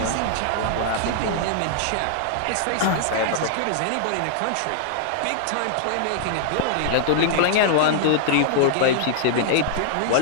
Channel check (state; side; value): different; both; correlation -0.01